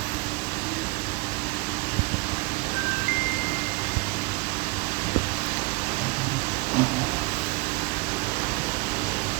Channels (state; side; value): quieter; left; 25.4 dB